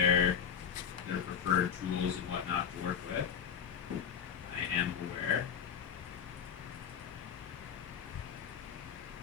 preferred tools and whatnot to work with. I am aware.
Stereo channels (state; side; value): quieter; right; 7.8 dB